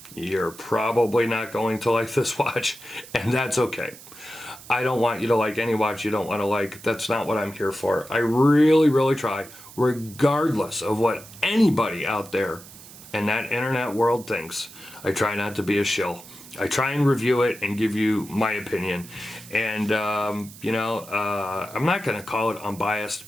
you're probably not going to like this watch, and that's okay. I don't want you to like any watch you don't want to like. That's not what I'm here for. I really, really try, regardless of what anybody out there in that internet world thinks. I try not to be a shill. I try and review it and give you my opinion. And, you know, I'm not going to call it unbiased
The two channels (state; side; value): noise; right; hiss, 18 dB below the sound